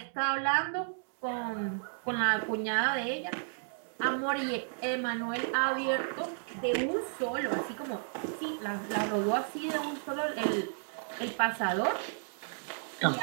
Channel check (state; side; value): silent; left; digital silence